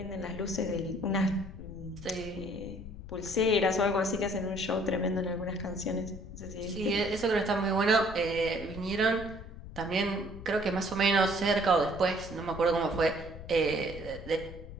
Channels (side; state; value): left; noise; rumble, 13 dB below the sound